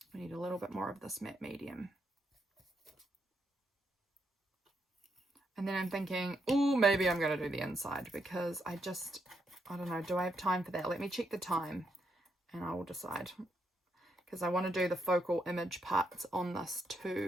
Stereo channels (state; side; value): normal; both; correlation 0.79